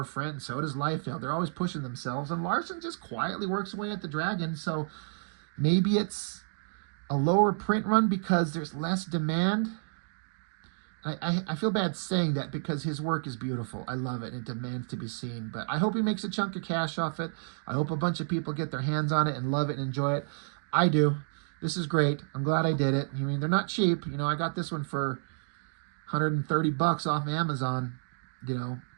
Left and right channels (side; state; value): left; silent; digital silence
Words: and so does Liefeld. They're always pushing themselves, and Larsen just quietly works away at the Dragon, so maybe it's a lower print run because there's less demand. I feel bad saying that because his work is beautiful. I love it, and it demands to be seen. But I hope he makes a chunk of cash off it. I hope a bunch of people get their hands on it and love it and enjoy it. I do. This is great. I'm glad I did it. I mean, they're not cheap. You know, I got this one for $130 off Amazon. You know,